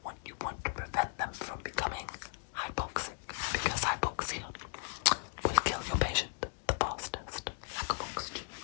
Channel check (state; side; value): silent; right; 54 dB below the other